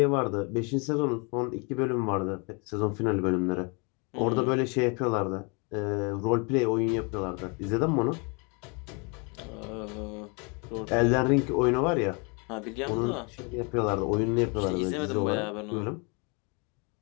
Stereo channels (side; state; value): right; quieter; 32.1 dB